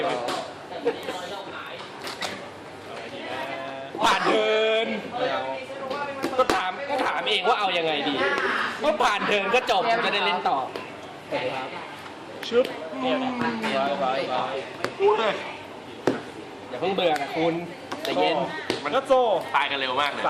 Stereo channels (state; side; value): identical; both; correlation 1.00